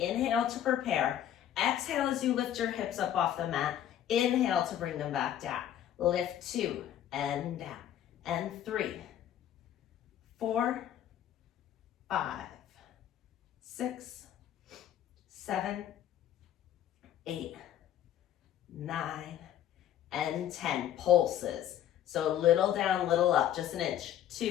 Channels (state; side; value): quieter; right; 11.0 dB